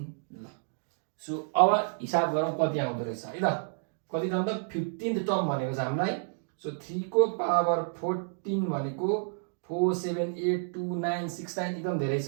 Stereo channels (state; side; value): silent; left; digital silence